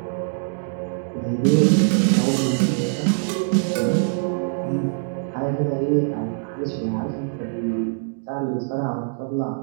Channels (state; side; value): silent; left; digital silence